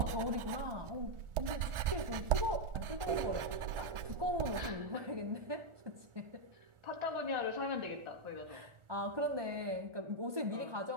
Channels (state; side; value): late; left; 1.4 ms